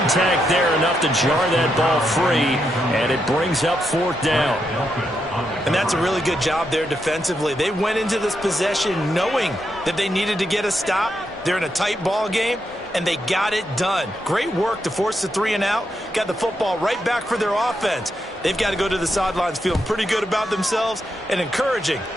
there enough to jar that ball free, and it brings up 4th down. And that's a really good job there defensively. They went into this possession knowing that they needed to get a stop. They're in a tight ball game, and they got it done. Great work to force the 3 and out. Got the football right back for their offense. They've got to go to the sidelines feeling pretty good about themselves and encouraging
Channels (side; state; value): both; normal; correlation 0.82